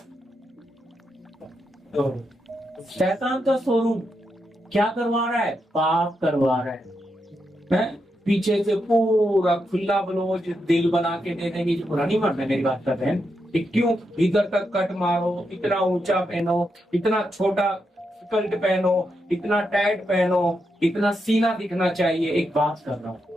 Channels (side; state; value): both; normal; correlation 0.84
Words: तो शैतान का शोरूम। क्या करवा रहा है, पाप करवा रहा है? पीछे से पूरा खुला ब्लाउज दिल बना के दे देंगे। पूरा नहीं मारना, मेरी बात कर रहे हैं, क्यों इधर तक कट मारो, इतना ऊंचा पहनो, इतना छोटा स्कर्ट पहनो, इतना टाइट पहनो, इतना सीना दिखना चाहिए। एक बात कर रहा हूं,